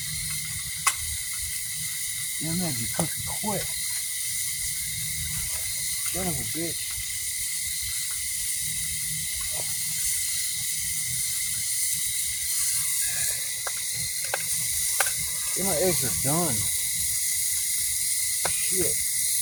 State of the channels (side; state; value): both; identical; correlation 1.00